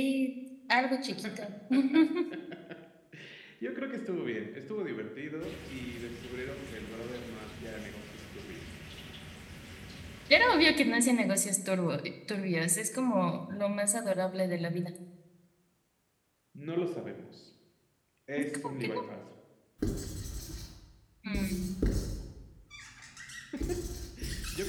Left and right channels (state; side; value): identical; both; correlation 1.00